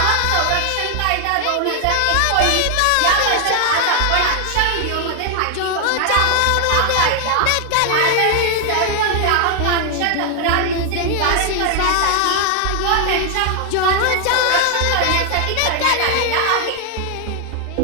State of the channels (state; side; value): different; both; correlation 0.00